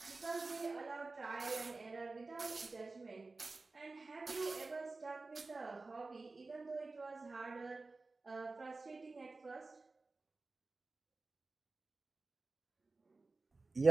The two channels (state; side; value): quieter; left; 3.6 dB